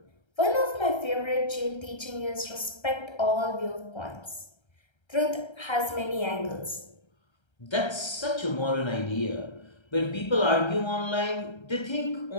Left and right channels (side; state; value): right; late; 1.3 ms